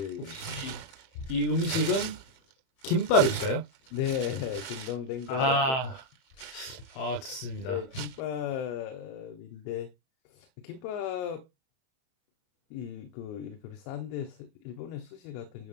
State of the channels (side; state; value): right; late; 30 ms